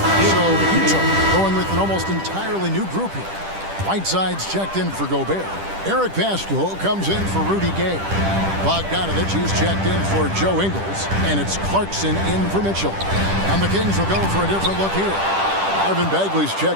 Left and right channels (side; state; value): left; late; 10 ms